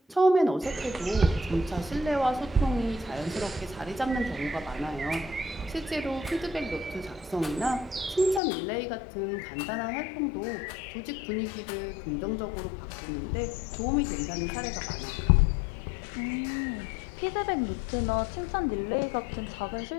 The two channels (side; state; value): right; drops out; at 8.4 s